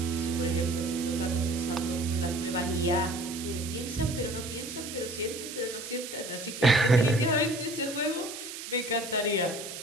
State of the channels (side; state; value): right; noise; hiss, 9 dB below the sound